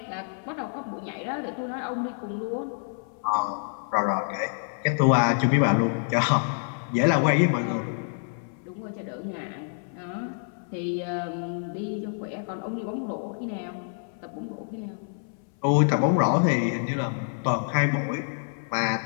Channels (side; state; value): right; silent; 60 dB below the other